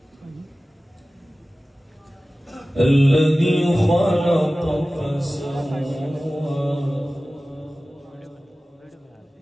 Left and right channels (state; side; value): normal; both; correlation 0.96